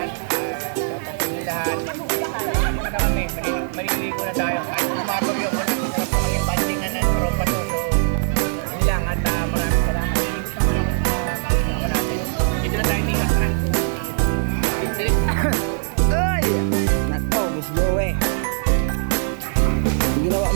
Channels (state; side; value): silent; left; 64 dB below the other